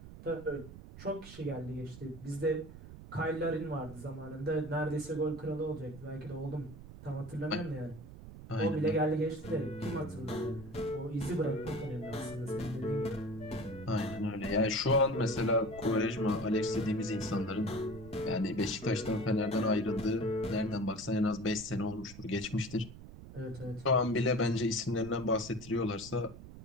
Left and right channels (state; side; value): noise; right; rumble, 15 dB below the sound